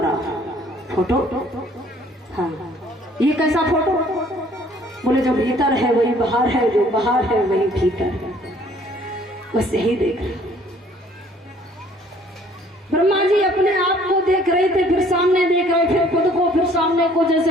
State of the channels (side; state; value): both; normal; correlation 0.58